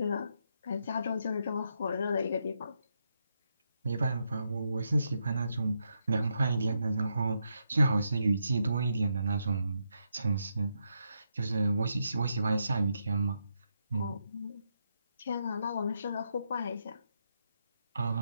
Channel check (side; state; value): both; inverted; correlation -0.81